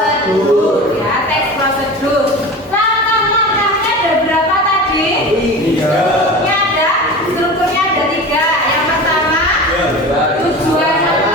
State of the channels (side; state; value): both; normal; correlation 0.32